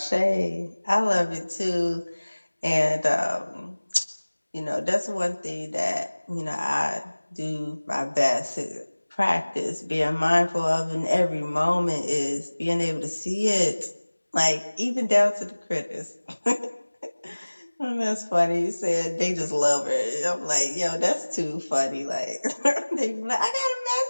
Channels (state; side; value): inverted; both; correlation -1.00